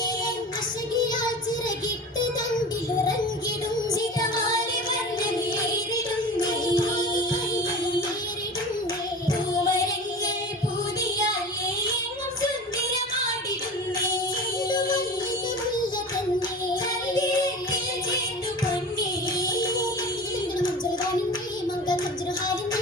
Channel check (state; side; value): normal; both; correlation 0.34